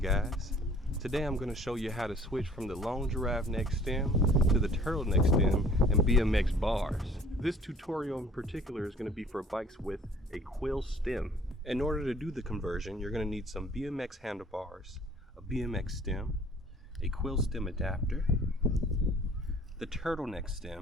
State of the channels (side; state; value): both; normal; correlation 0.53